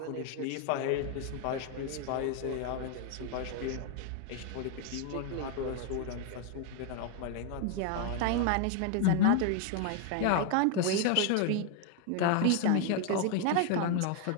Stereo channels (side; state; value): both; different; correlation 0.00